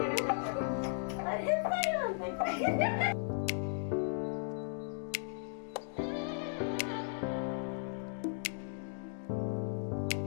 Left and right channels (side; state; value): right; silent; digital silence